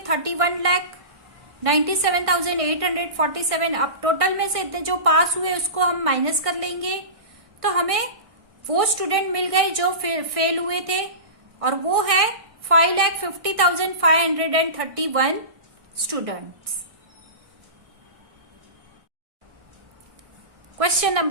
अब टोटल में से इतने जो पास हुए उसको हम माइनस कर लेंगे, तो हमें वो स्टूडेंट मिल गए जो फेल हुए थे, और वो है 5,50,531 students. Question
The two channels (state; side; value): late; left; 1.6 ms